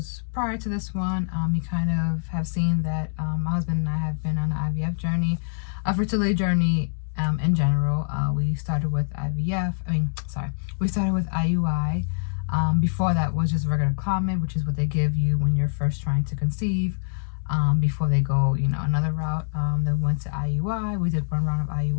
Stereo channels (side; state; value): right; silent; digital silence